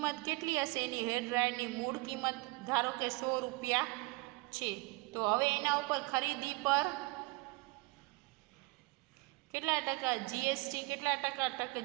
કેટલી હશે? એની હેર ડ્રાયરની મૂળ કિંમત ધારો કે 100 રૂપિયા છે. તો હવે એના ઉપર ખરીદી પર કેટલા ટકા જીએસટી, કેટલા ટકા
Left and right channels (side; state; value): left; quieter; 24.8 dB